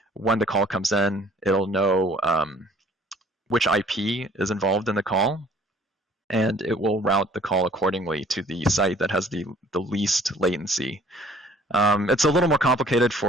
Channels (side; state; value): both; normal; correlation 0.55